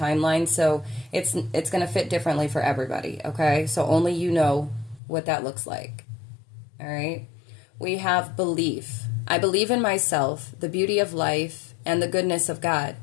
so it's going to fit differently for everybody, okay? So only you know what that looks like, all right? We have belief. I believe in myself, the beauty of life, and the goodness of God.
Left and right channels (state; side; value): drops out; right; at 5.0 s